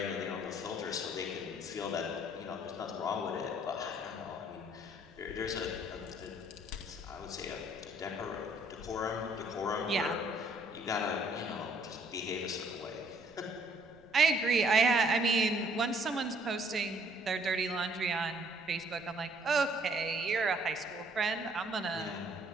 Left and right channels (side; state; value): right; noise; rumble, 28 dB below the sound